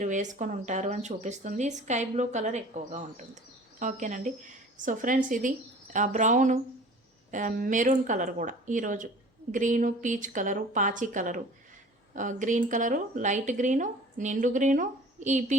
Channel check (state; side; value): normal; both; correlation 0.45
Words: వేసుకొని ఉంటారు అని చూపిస్తుంది. స్కై బ్లూ కలర్ ఎక్కువగా ఉంటుంది. ఓకేనండి. సో ఫ్రెండ్స్, ఇది బ్రౌను, మెరూన్ కలర్ కూడా ఈరోజు, గ్రీను, పీచ్ కలరు, పాచి colour, green colour, light green, నిండు గ్రీను,